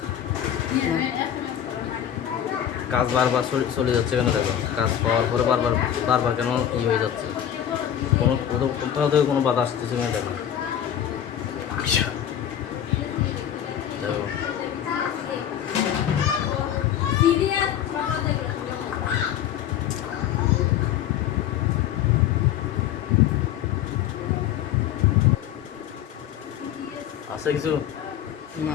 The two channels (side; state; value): right; quieter; 10.2 dB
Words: কাজ বারবার চলে যাচ্ছে কেন দেখো। কাজ পাওয়ার পরে বারবার কেন হয়ে যাচ্ছে, কোনো কোথাও থেকে কোনো বাধা আসতেছে কিনা দেখো। দেখো আছে কিছু